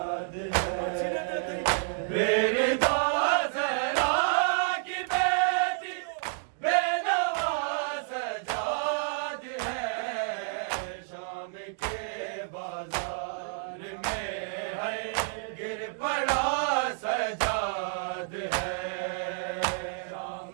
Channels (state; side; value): silent; left; digital silence